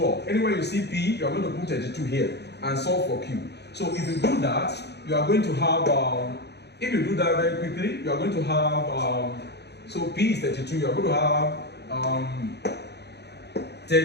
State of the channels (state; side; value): late; right; 0.49 ms